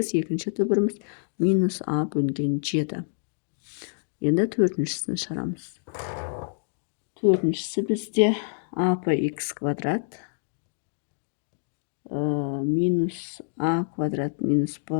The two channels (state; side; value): silent; right; digital silence